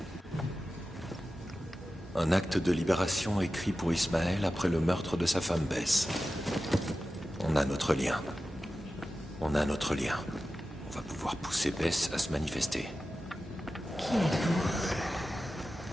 Un acte de libération écrit pour Ismaël après le meurtre de sa femme Bess. On a notre lien. On a notre lien. On va pouvoir pousser Bess à se manifester. Qui êtes-vous?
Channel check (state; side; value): normal; both; correlation 0.94